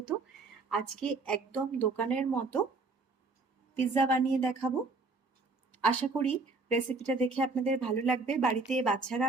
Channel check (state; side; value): quieter; left; 3.7 dB